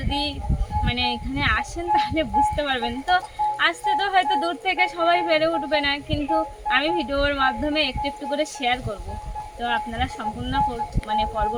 মানে এখানে আসেন তাহলে বুঝতে পারবেন। তো আসতে তো হয়তো দূর থেকে সবাই পেরে উঠবে না, কিন্তু আমি ভিডিওর মাধ্যমে একটু একটু করে শেয়ার করব। তো আপনারা সম্পূর্ণ মানে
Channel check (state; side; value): identical; both; correlation 1.00